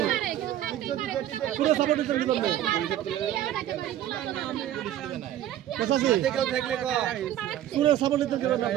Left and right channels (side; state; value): left; quieter; 12.1 dB